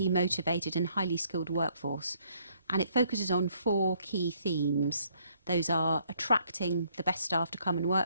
motivated and highly skilled workforce. And it focuses on 4 key themes. Those are attracting the best staff to come and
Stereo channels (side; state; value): both; inverted; correlation -0.67